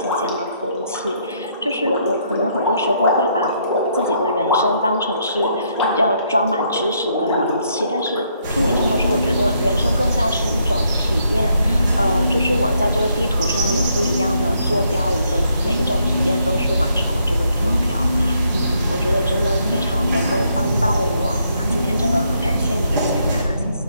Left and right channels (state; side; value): inverted; both; correlation -0.73